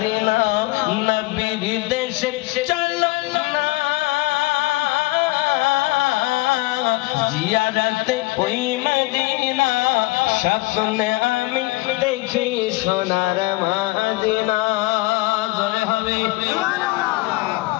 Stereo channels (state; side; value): quieter; right; 21.0 dB